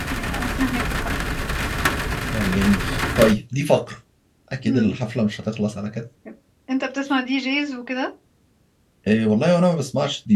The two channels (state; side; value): identical; both; correlation 1.00